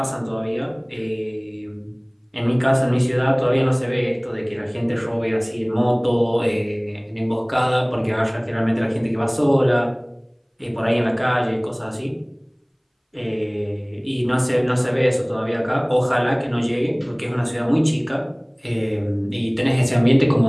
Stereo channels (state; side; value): identical; both; correlation 1.00